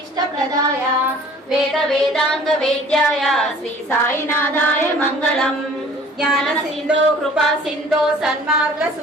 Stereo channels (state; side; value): normal; both; correlation 0.50